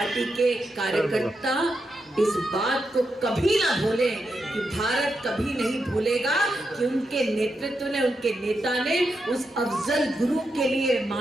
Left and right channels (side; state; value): both; normal; correlation 0.85